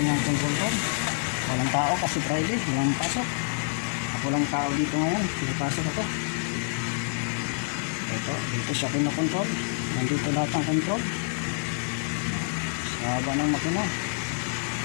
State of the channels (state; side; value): silent; right; 60 dB below the other